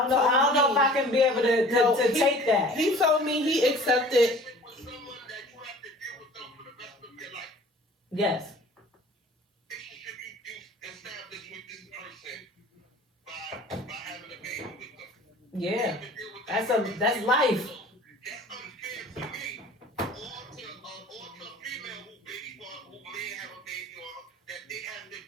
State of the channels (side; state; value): both; normal; correlation 0.46